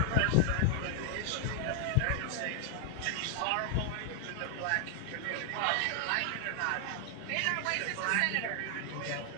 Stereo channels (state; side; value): different; both; correlation 0.00